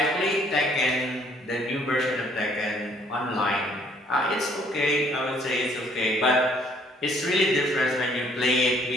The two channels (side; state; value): both; normal; correlation 0.62